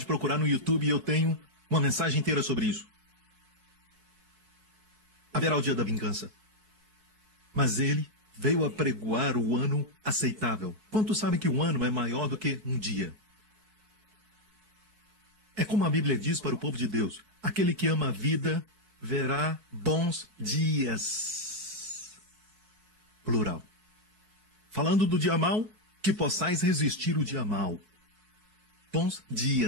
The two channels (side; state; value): left; late; 4.6 ms